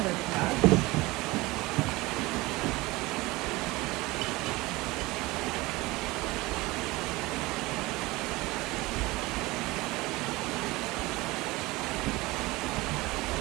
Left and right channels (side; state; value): left; quieter; 21.3 dB